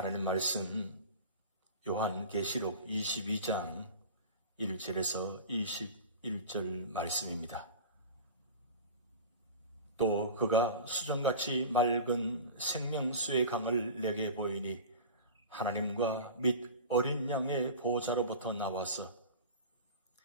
말씀 요한계시록 22장 1절에서 22 1절 말씀입니다. 또 그가 수정같이 맑은 생명수의 강을 내게 보이니 하나님과 및 어린 양의 보호자로부터 나와서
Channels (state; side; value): inverted; both; correlation -0.33